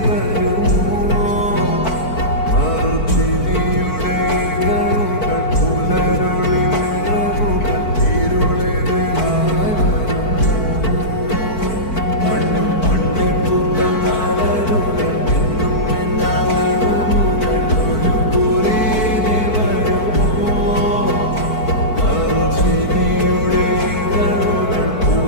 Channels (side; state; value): right; late; 4.5 ms